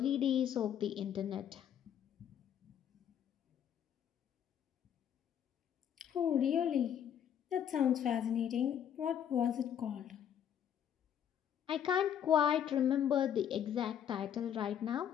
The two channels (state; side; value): quieter; right; 9.3 dB